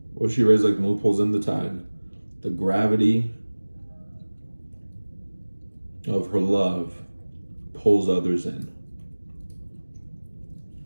What if she raves like the moon pulls in the tide? The gravity of her love pulls others in.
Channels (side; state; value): both; inverted; correlation -1.00